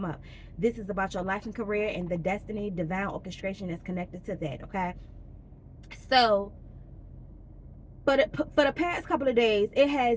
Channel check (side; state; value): both; identical; correlation 1.00